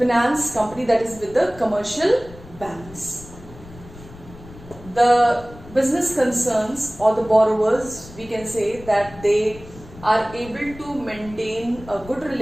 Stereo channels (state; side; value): noise; left; rumble, 18 dB below the sound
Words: company, that is with the commercial banks. The business concerns or the borrowers, we can say that they are able to maintain a good